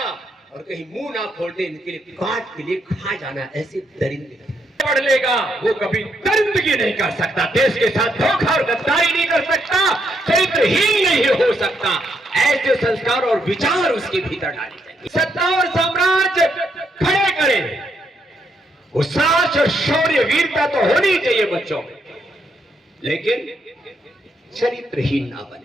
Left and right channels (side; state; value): both; normal; correlation 0.76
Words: और कहीं मुंह ना खोलते इनके लिए काट के लिए खा जाना, ऐसे दरिंदे पढ़ लेगा वो कभी दरिंदगी नहीं कर सकता, देश के साथ धोखा और गद्दारी नहीं कर सकता, चरित्रहीन नहीं हो सकता। ऐसे संस्कार और विचार उसके भीतर डाले जाएंगे। सत्ता और साम्राज्य खड़े करें, साहस और शौर्य वीरता तो होनी चाहिए बच्चों में, लेकिन चरित्रहीन ना